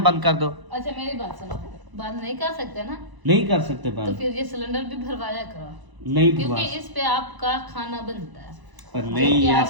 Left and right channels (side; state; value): left; late; 1.0 ms